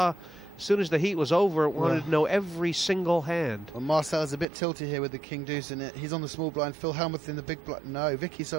as soon as the heat was over, wanted to know every single hand. Well, Marcel's a bit tilty here with the king deuce in it. He's on the small blind. Phil Hellmuth in the big blind. No, Vicky,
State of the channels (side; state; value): left; drops out; at 4.5 s